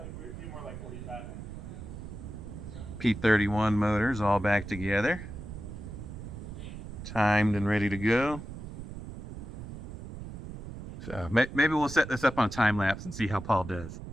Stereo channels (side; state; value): right; noise; rumble, 10 dB below the sound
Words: be more like 45. P31 motors all back together. Timed and ready to go. So maybe we'll set this up on a time lapse and see how Paul does.